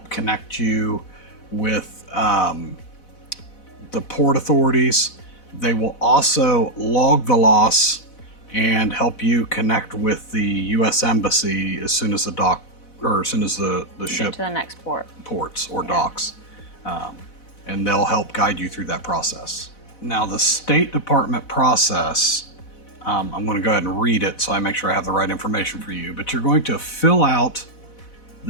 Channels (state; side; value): late; right; 4.0 ms